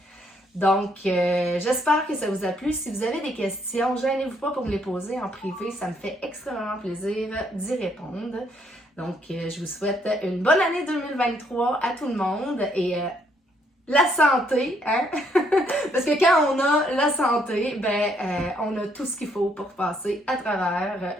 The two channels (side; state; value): both; normal; correlation 0.70